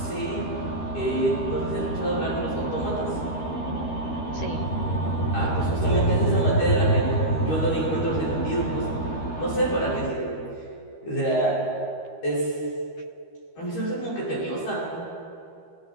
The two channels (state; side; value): late; right; 13 ms